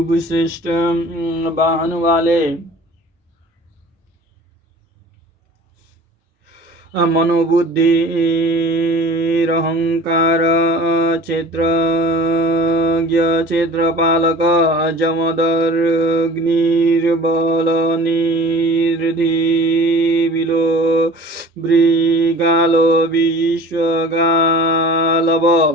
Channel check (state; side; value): normal; both; correlation 0.42